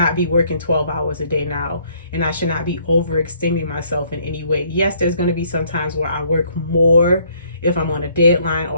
be working 12 hours a day now, and I should not be overextending myself in any way. Yes, there's going to be some times where I work more if I'm on a deadline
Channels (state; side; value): inverted; both; correlation -0.64